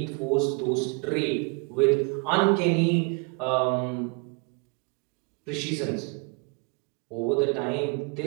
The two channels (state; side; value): quieter; left; 31.9 dB